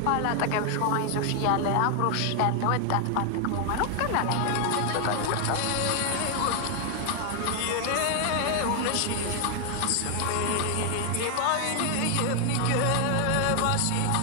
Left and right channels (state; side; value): different; both; correlation 0.00